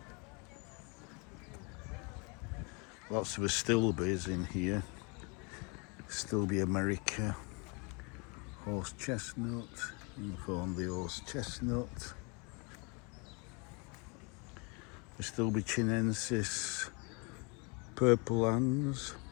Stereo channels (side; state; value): right; quieter; 32.0 dB